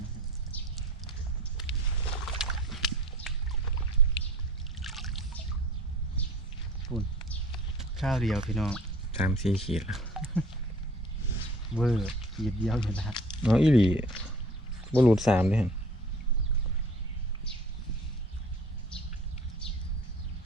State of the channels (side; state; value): both; normal; correlation 0.47